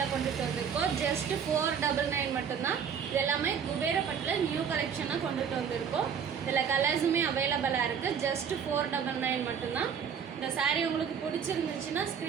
கொண்டுட்டு வந்திருக்கோம். ஜஸ்ட் 499 மட்டும்தான். இது எல்லாமே குபேரப்பட்டில் நியூ கலெக்ஷனாக கொண்டுட்டு வந்திருக்கோம். இதில் கலர்ஸுமே அவைலபிளாக இருக்குது. ஜஸ்ட் 499 மட்டும்தான். இந்த சாரீ உங்களுக்கு பிடிச்சிருந்துச்சுன்னா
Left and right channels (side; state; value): left; quieter; 7.3 dB